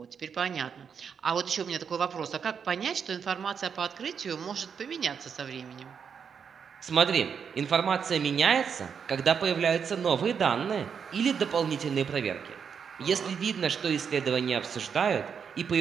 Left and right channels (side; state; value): left; quieter; 6.8 dB